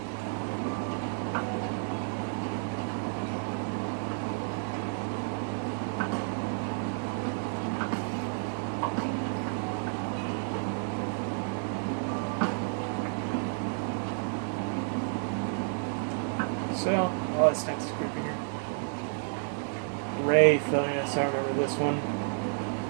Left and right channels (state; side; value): silent; left; 57 dB below the other